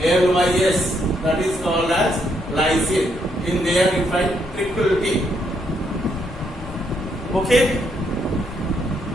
that is called as lysine. In there you find triple T. Okay?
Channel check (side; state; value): both; normal; correlation 0.75